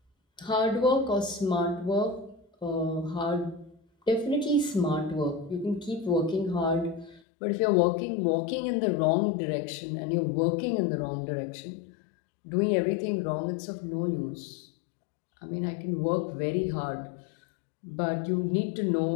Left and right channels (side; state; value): right; drops out; at 7.2 s